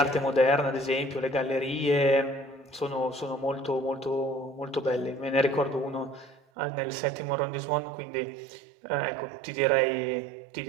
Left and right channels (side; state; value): left; drops out; at 6.4 s